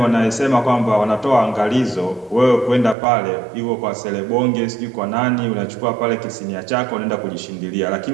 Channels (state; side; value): drops out; left; at 3.0 s